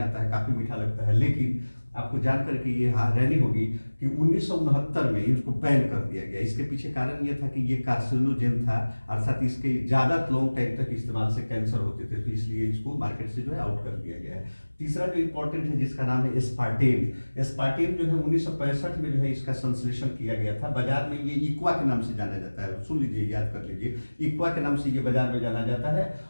आता है, काफ़ी मीठा लगता है। लेकिन आपको जानकर के ये हैरानी होगी कि 1969 में इसको बैन कर दिया गया। इसके पीछे कारण ये था कि ये कार्सिनोजेन था, अर्थात इसके ज़्यादा लॉन्ग टाइम तक इस्तेमाल से कैंसर होते थे, तो इसलिए इसको मार्केट से जो है आउट कर दिया गया है। तीसरा जो इम्पोर्टेंट है जिसका नाम है एस्पार्टेम। एस्पार्टेम जो है 1965 में जो है इसका संश्लेषण किया गया था। बाजार में ये इक्वा के नाम से जाना जाता है, सुन लीजिए, याद कर लीजिए, इक्वा के नाम से ये बाजार में जाना जाता है,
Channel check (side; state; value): both; inverted; correlation -1.00